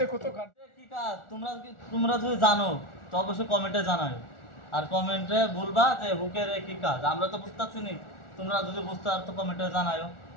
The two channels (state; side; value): late; right; 1.4 ms